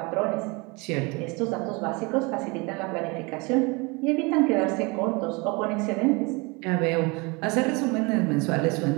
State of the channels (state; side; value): quieter; left; 27.7 dB